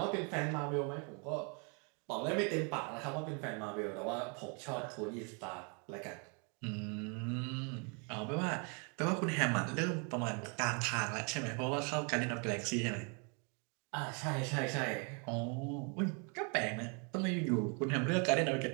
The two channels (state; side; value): quieter; left; 35.7 dB